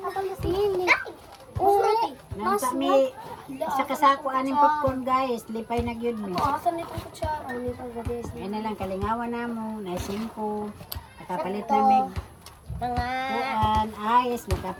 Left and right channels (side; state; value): both; identical; correlation 1.00